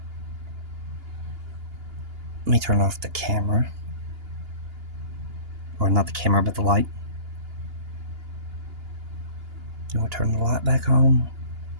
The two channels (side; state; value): left; late; 2.8 ms